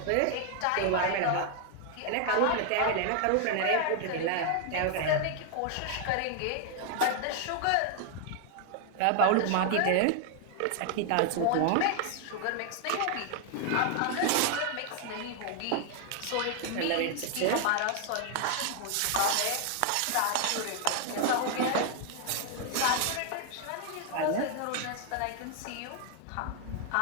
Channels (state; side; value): different; both; correlation 0.00